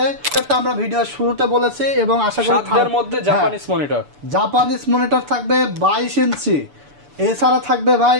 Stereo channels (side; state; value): left; late; 6.9 ms